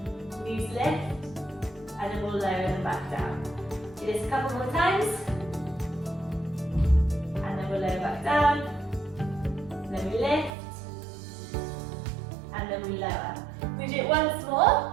knees lift, and then we'll lower them back down. Do this a couple more times. We'll lower back down, then we lift, and then we lower. We do it once more,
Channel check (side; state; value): left; drops out; at 10.5 s